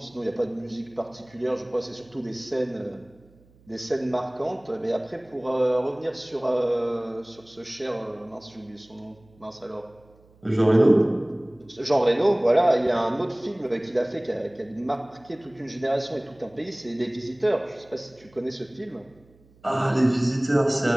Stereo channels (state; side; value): noise; right; hum, 29 dB below the sound